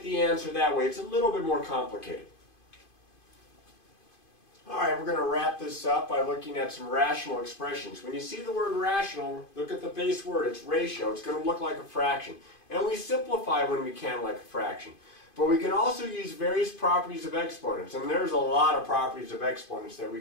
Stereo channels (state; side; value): late; right; 2.5 ms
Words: the answer that way. It's a little bit more complicated. Alright, we're going to wrap this up by looking at some rational expressions. When you see the word rational, look at the base word. It's ratio. It's going to look like a fraction. And we simplify when we can like a fraction. But we can also use various properties of exponents. And there's a lot of properties of exponents that we